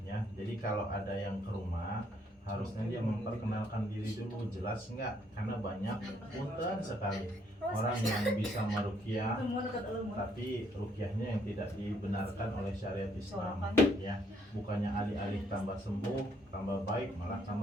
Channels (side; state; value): both; normal; correlation 0.69